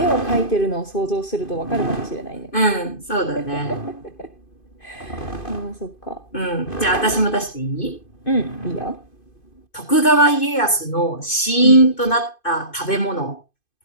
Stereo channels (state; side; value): late; right; 2.5 ms